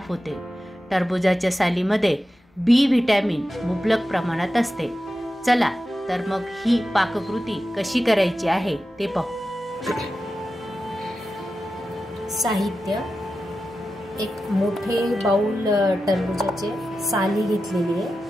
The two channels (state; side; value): normal; both; correlation 0.92